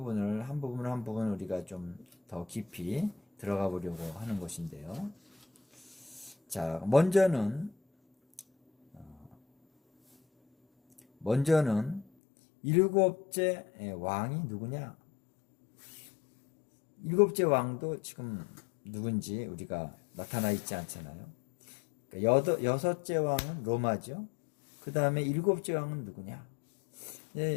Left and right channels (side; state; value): right; drops out; at 12.1 s